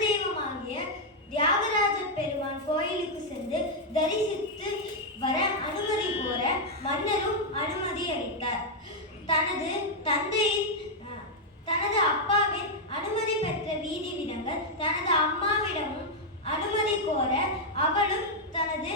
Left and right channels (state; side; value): normal; both; correlation -0.02